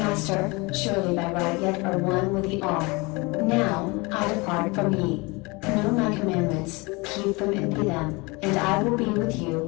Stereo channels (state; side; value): quieter; right; 26.0 dB